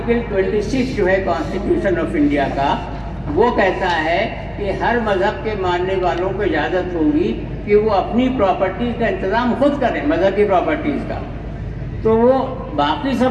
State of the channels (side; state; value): both; identical; correlation 1.00